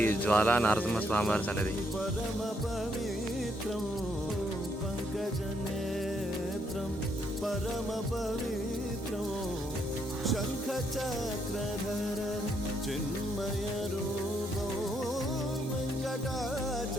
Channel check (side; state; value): both; normal; correlation 0.74